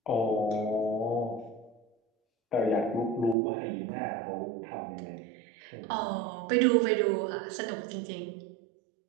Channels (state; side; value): drops out; left; at 3.4 s